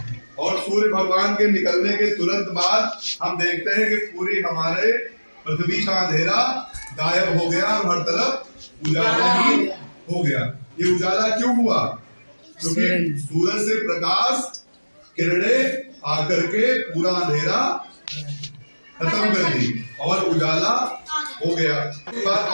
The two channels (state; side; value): inverted; both; correlation -1.00